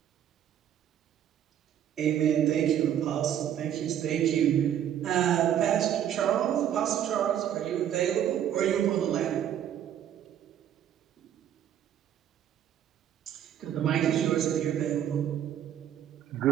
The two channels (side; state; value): left; quieter; 10.2 dB